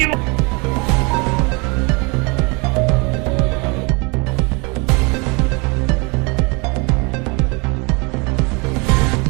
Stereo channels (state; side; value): quieter; left; 29.5 dB